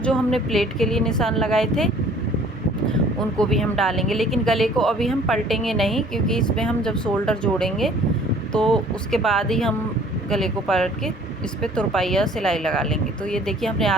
हमने प्लेट के लिए निशान लगाए थे उनको भी हम डालेंगे, लेकिन गले को अभी हम पलटेंगे नहीं, क्योंकि इसमें हम जब शोल्डर जोड़ेंगे तो उसके बाद ही हम गले को पलट के इस पर तुरपाई या सिलाई लगा लेंगे। तो ये देखिए हमने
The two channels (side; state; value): both; normal; correlation 0.54